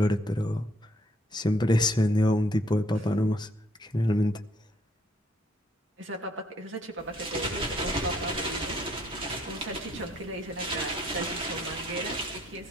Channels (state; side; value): normal; both; correlation 0.67